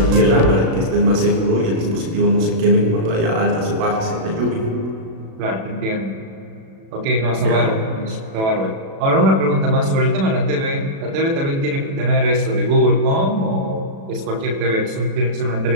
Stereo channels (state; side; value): late; left; 36 ms